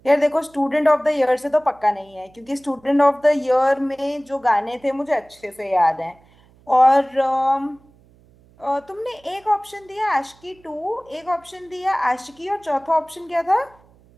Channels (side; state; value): right; noise; hum, 29 dB below the sound